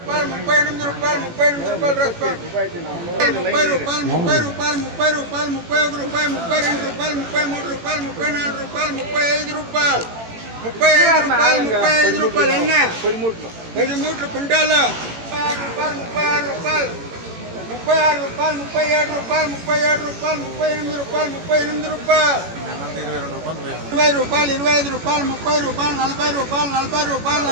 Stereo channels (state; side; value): late; left; 18 ms